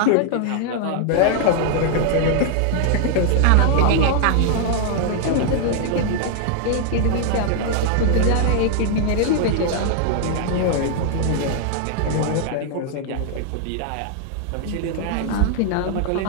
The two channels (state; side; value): different; both; correlation 0.00